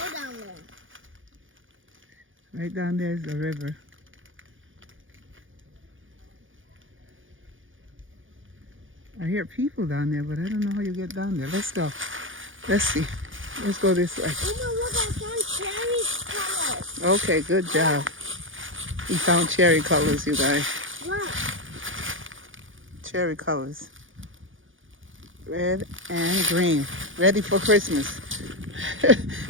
down there. Right down there is the river. I hear people down there, but I don't know how you get down there. Let's go. Let's see. Let's go this way. Uma, look, I found cherry colors. Okay, good job. We found cherry colors, you guys. Look. Cherry colors. Red and green. Ready for Christmas.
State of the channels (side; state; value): left; late; 0.58 ms